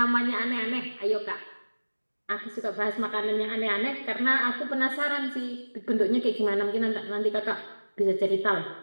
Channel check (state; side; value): inverted; both; correlation -1.00